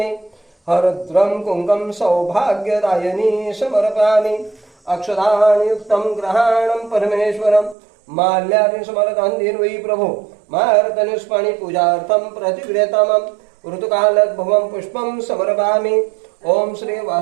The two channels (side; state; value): left; drops out; at 7.8 s